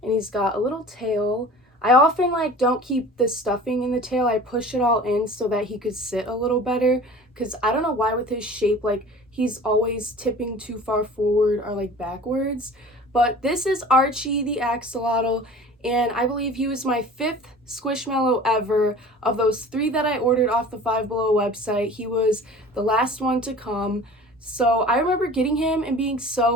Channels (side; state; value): both; normal; correlation 0.42